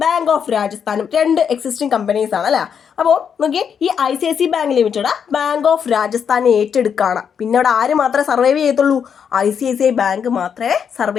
ബാങ്ക് ഓഫ് രാജസ്ഥാനും രണ്ട് എക്സിസ്റ്റിംഗ് കമ്പനീസ് ആണ് അല്ലേ. അപ്പോൾ നോക്കിയേ, ഈ ICICI bank limited bank of രാജസ്ഥാനെ ഏറ്റെടുക്കുകയാണ്. പിന്നെ അവിടെ ആര് മാത്രമേ സർവൈവ് ചെയ്യത്തുള്ളൂ? ICICI ബാങ്ക് മാത്രമേ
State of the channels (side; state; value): right; quieter; 7.4 dB